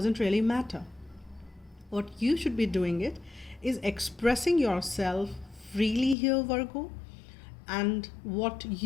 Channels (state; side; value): drops out; right; at 6.2 s